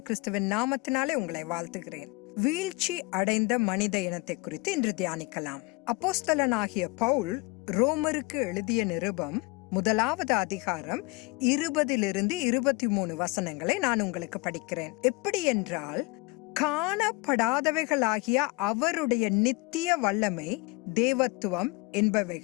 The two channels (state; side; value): quieter; right; 24.8 dB